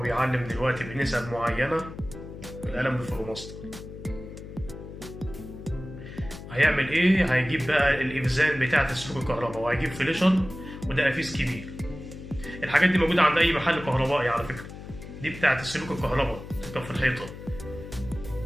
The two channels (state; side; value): noise; left; hum, 13 dB below the sound